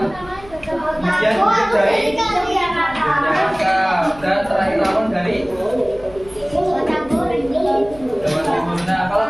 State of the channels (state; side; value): noise; left; hum, 20 dB below the sound